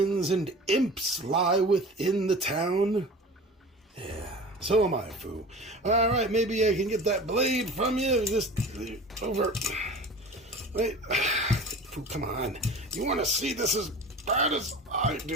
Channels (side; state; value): both; normal; correlation 0.38